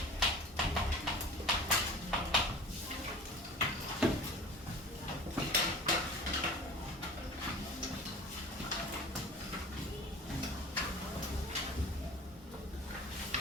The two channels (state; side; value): normal; both; correlation 0.39